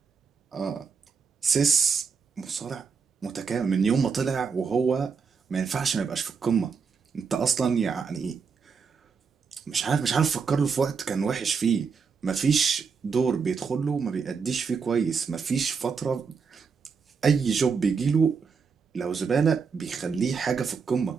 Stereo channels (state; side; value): quieter; left; 5.7 dB